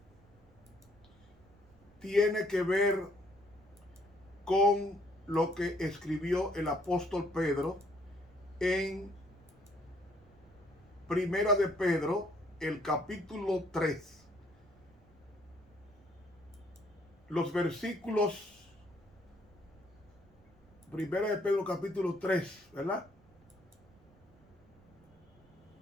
tiene que ver con lo que escribió el apóstol Pedro en Primera de Pedro, el capítulo 3. Los versículos, Primera de Pedro, capítulo 3, ¿verdad?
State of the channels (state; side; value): noise; right; rumble, 27 dB below the sound